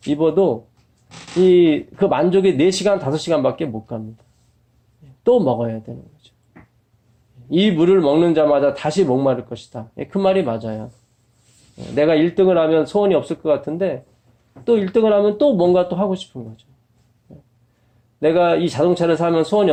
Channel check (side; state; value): both; identical; correlation 1.00